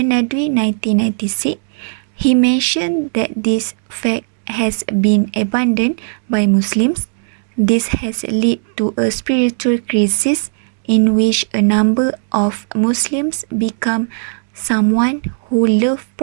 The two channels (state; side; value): silent; left; digital silence